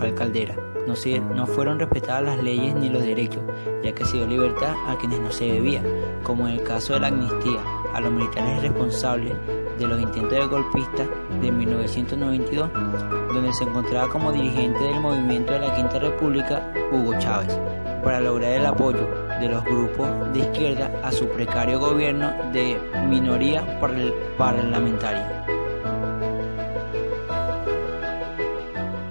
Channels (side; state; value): both; inverted; correlation -1.00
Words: Caldera, no fueron respetadas las leyes ni los derechos, ya que se dio libertad a quienes no se debía, como en el caso de la amnistía a los militares responsables de los intentos de golpistas de 1992, donde se encontraba como dirigente del movimiento de la Quinta República Hugo Chávez, para lograr el apoyo de los grupos de izquierda a su precario gobierno de minoría parlamentaria.